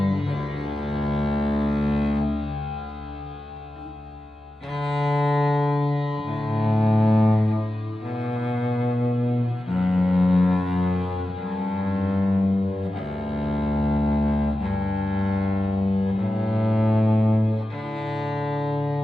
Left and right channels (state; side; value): normal; both; correlation 0.92